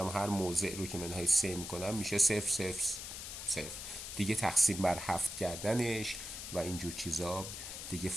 هر موضع رو که منهای 3 میکنم میشه 0 0 0. دیگه تقسیم بر 7 کردنش و اینجور چیزا دیگه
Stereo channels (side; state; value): left; noise; hiss, 8 dB below the sound